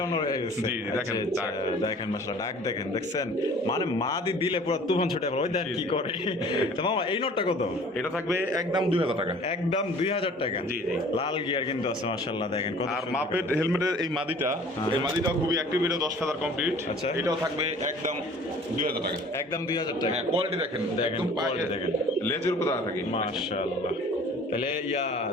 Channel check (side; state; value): both; normal; correlation 0.48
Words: নর হয়ে গেছে। জি, দেখেন, আচ্ছা, ডাক। দেখেন মশলা ডাক দেখেন, দেখছেন মানে মাদি দিলে পুরো তুফান ছুটে পড়ে। ওই দেখ কি করে। তো মামা এই নটটা কত? এটা থাকবে একদম 2000 টাকা। একদম 2000 টাকা। জি, জি। লাল গিয়ার কিন্তু আছে মাশাআল্লাহ দেখেন কত আর সুন্দর মাপেট করে। হেলমেটের এই মাদিটা, এই মাদিটাও খুবই অ্যাক্টিভ, এটা 10 ফেদার কমপ্লিট। আচ্ছা। এটাও থাকবে একদম 2000 টাকা। একদম 2000 টাকা। হ্যাঁ কোয়ালিটি দেখেন, দেখেন, একদম পায়ে quality দেখেন। লেজের উপর দাঁড়া থাকে। মাশাআল্লাহ। তাহলে